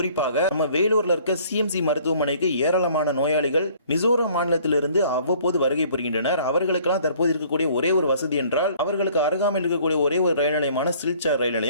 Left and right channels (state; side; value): inverted; both; correlation -0.56